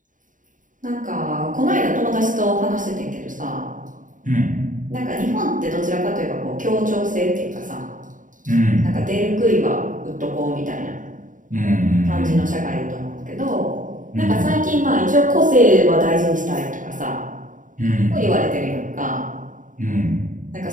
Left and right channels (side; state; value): left; late; 0.38 ms